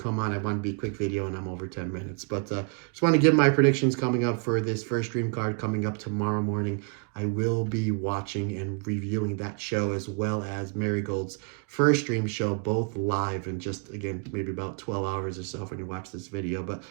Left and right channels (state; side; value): quieter; left; 37.0 dB